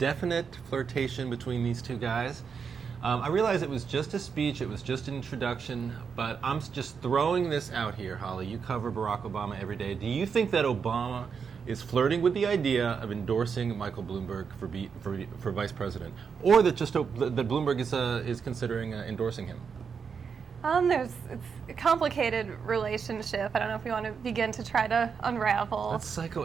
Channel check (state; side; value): quieter; left; 6.2 dB